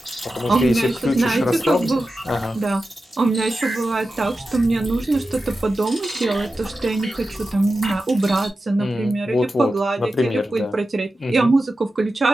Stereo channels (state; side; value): normal; both; correlation 0.92